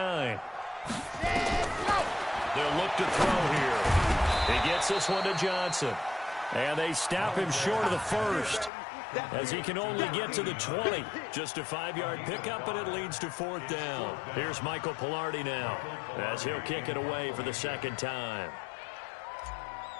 They'll look to throw here. He gets this one to Johnson. And they stop him short of the 1st as he can only get to the 20. Just a 5-yard pickup, and it leads to 4th down. Here's Michael Pilardi now as he'll kick it away for the 2nd time.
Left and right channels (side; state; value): right; drops out; at 8.7 s